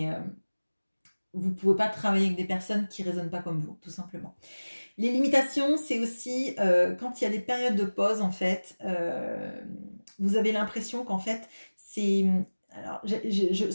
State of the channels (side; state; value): both; inverted; correlation -1.00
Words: vous pouvez pas travailler avec des personnes qui ne résonnent pas comme vous, tout simplement. Les limitations, c'est aussi quand il y a des périodes de pause, en fait, vous avez l'impression qu'en fait, c'est... Alors,